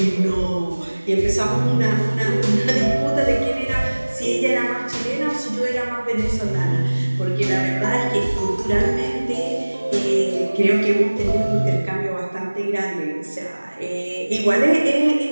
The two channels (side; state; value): both; inverted; correlation -1.00